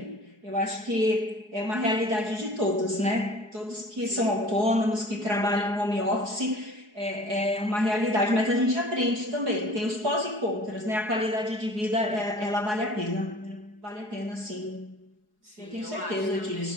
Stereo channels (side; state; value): left; late; 4.8 ms